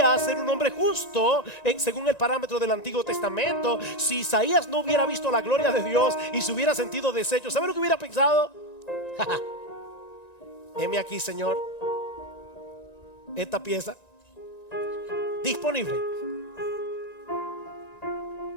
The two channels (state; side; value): late; right; 1.9 ms